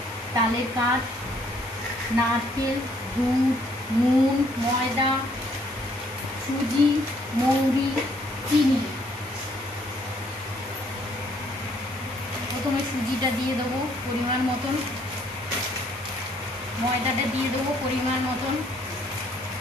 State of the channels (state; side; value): normal; both; correlation 0.65